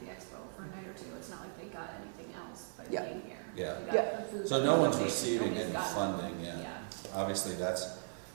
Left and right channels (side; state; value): left; silent; digital silence